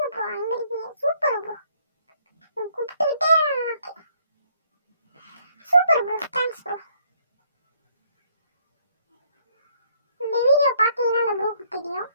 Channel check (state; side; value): inverted; both; correlation -0.67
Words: ப்ரோ, அங்க இருக்கீங்க, சூப்பர் ப்ரோ, கூப்பிட்டுக்கிட்டே சூப்பர் ப்ரோ, தேங்க்ஸ் ப்ரோ. இந்த வீடியோ பார்த்தீங்கன்னா அந்த ப்ரோக்கு தெரியும்.